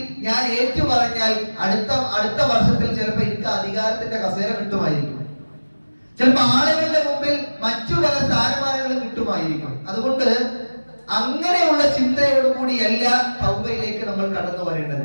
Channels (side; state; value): both; inverted; correlation -1.00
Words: ഞാൻ ഏറ്റു പറഞ്ഞാൽ അടുത്ത വർഷത്തിൽ ചിലപ്പോ എനിക്ക് അധികാരത്തിന്റെ കസേര കിട്ടുമായിരിക്കും, ചിലപ്പോ ആളുകളുടെ മുമ്പിൽ മറ്റു പല സ്ഥാനമാനങ്ങളും കിട്ടുമായിരിക്കും. അതുകൊണ്ട് അങ്ങനെയുള്ള ചിന്തയോടുകൂടിയല്ല തൗബയിലേക്ക് നമ്മൾ കടന്നു